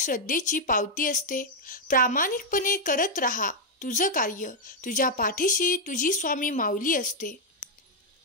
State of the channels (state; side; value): normal; both; correlation 0.00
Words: पावती असते. प्रामाणिकपणे करत राहा तुझं कार्य. तुझ्या पाठीशी तुझी स्वामी माऊली असते.